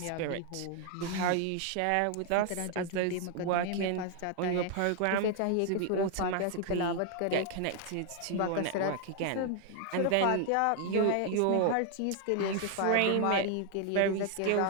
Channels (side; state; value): both; different; correlation 0.00